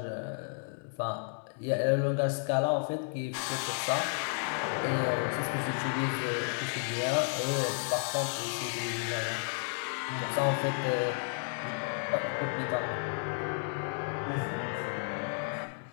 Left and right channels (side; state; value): right; silent; digital silence